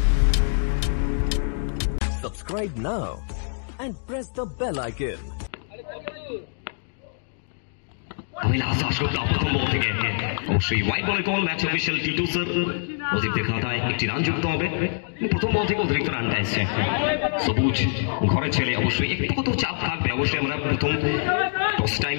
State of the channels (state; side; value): silent; right; digital silence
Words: Subscribe now and press the bell icon. Abhilash Dasgupta प्रथम बॉल থেকে অবশ্যই হোয়াইট বলে কল ম্যাচ অফিশিয়াল টি2 স্যার অধিকদের খাতায় একটি রান যুক্ত হবে প্রথম বল থেকে অতিরিক্ত রানটা এসেছে সবুজ ঘরে ছেলে অবশ্যই একটু কত চাপ থাকবে অবশ্যই আমরা প্রথম টস